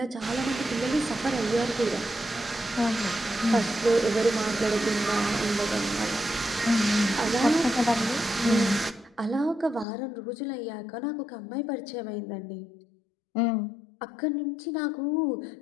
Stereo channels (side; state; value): right; drops out; at 9.9 s